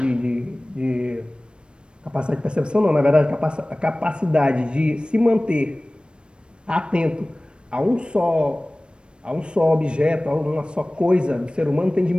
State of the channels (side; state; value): left; late; 0.056 ms